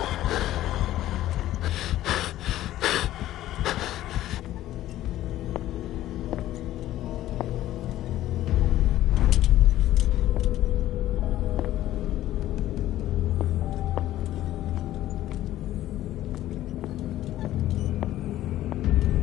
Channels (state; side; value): quieter; right; 14.0 dB